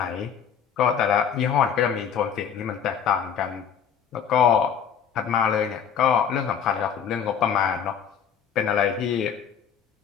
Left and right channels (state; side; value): quieter; right; 7.8 dB